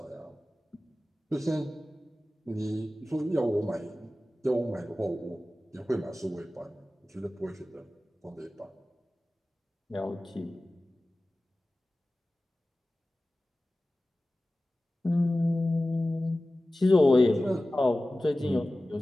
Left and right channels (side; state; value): both; normal; correlation 0.96